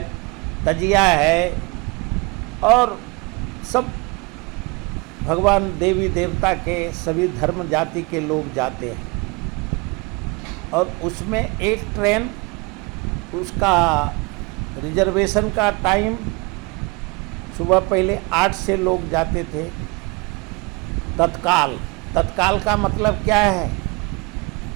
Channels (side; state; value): left; quieter; 27.4 dB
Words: तजिया है और सब भगवान देवी देवता के सभी धर्म जाति के लोग जाते हैं। और उसमें एक ट्रेन, उसका रिजर्वेशन का टाइम सुबह पहले 8 से लोग जाते थे। तत्काल का मतलब क्या है?